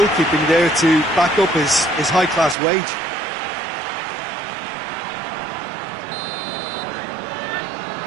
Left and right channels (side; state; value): left; drops out; at 2.6 s